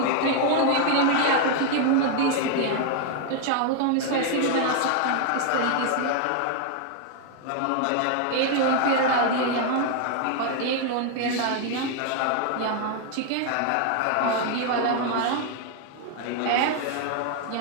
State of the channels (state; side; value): different; both; correlation 0.00